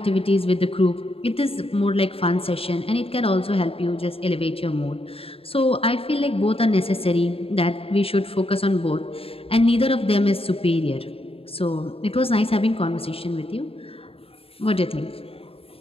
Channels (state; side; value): late; right; 0.27 ms